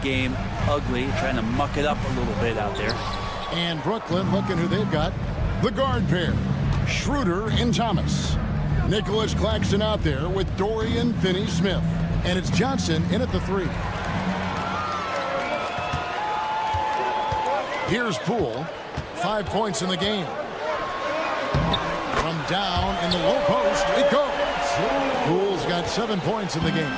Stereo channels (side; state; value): both; identical; correlation 1.00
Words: ugly, trying to muck it up a little bit out there. And Brooklyn, looking who they've got. The guard pair, Schroeder and Thomas. Nicholas Claxton out there with Dorian Finney-Smith. And it's Johnson in at the 3. Here's Poole. 5 points in the game. From down in the low post, it goes. Poole's got 7 points in the game.